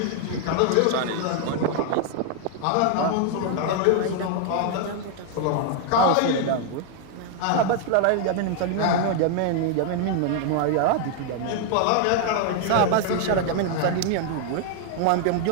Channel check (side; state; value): both; different; correlation 0.00